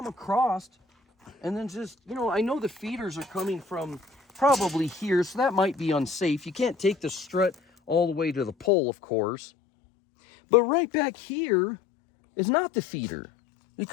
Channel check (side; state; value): right; drops out; at 8.7 s